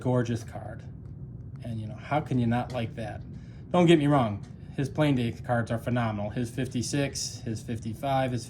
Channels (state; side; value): identical; both; correlation 1.00